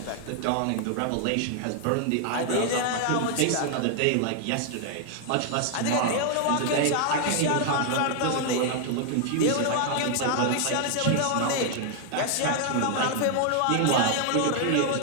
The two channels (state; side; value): different; both; correlation 0.00